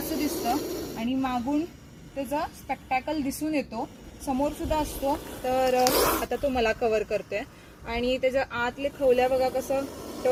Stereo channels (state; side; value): identical; both; correlation 1.00